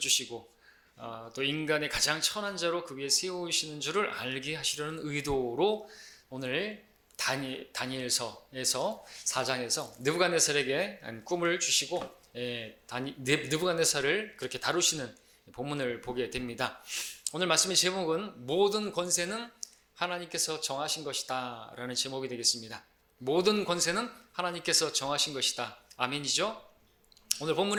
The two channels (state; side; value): identical; both; correlation 1.00